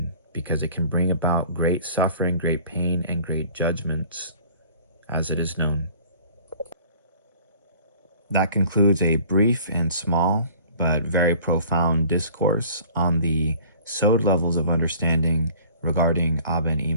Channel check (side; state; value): both; inverted; correlation -0.50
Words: because it can bring about great suffering, great pain, and great judgments, as it is known. That concludes a brief and small, but very profound discourse on the Sod levels of understanding regarding Abba and